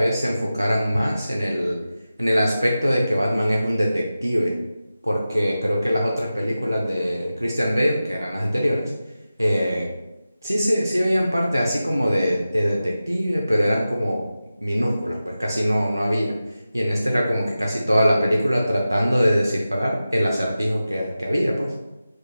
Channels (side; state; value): both; inverted; correlation -0.94